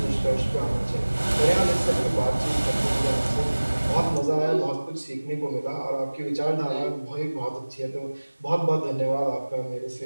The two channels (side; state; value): both; inverted; correlation -1.00